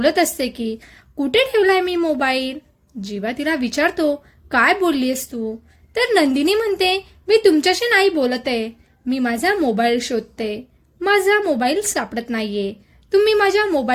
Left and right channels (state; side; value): identical; both; correlation 1.00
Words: असते की कुठे ठेवलाय मी मोबाईल. जीवा तिला विचारतो, काय बोललीस तू? तर नंदिनी म्हणते, मी तुमच्याशी नाही बोलत आहे, मी माझा मोबाईल शोधते. माझा मोबाईल सापडत नाहीये. तुम्ही माझ्या